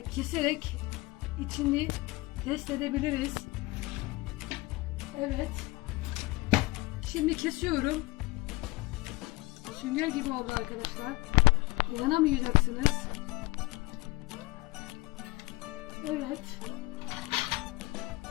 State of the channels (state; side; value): quieter; right; 22.5 dB